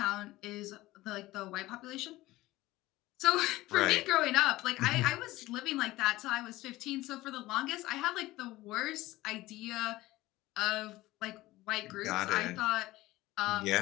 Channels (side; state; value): right; quieter; 17.9 dB